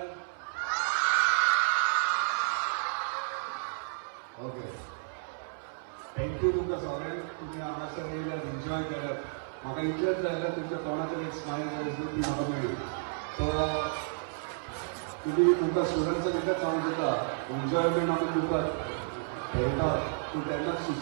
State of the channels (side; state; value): left; silent; 57 dB below the other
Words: ओके. थँक्यू तुमकां सगळ्यांक तुम्ही हांगासर येयल्यात एन्जॉय केल्यात. म्हाका इतलेंच जाल्यार तुमच्या तोंडाचेर एक स्मायल दिसली म्हाका मेळ्ळी. सो तुमकां स्टुडंट्सांक एकच सांगूंक सोदता, एन्जॉयमेंट आमी करतात खेळटात पूण तेन्ना